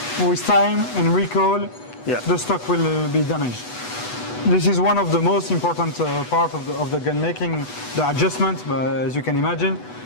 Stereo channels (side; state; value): right; late; 8.1 ms